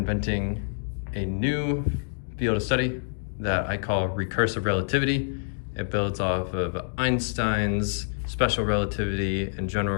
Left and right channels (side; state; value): right; silent; digital silence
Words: a new field of study that I call recursive relativity. It builds off of Einstein's special relativity and